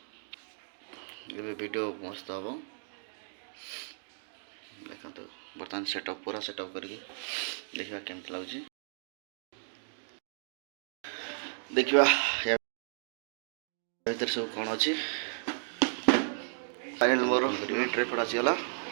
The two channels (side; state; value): left; silent; digital silence